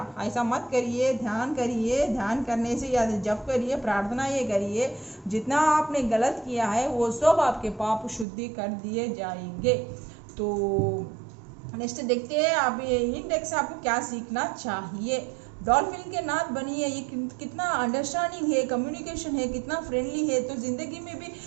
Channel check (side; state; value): left; drops out; at 8.2 s